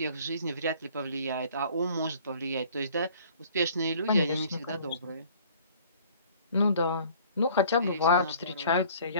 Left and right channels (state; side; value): inverted; both; correlation -0.52